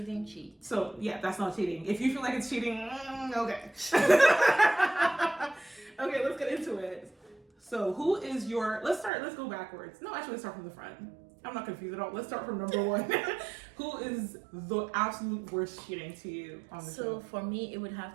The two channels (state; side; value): drops out; left; at 9.1 s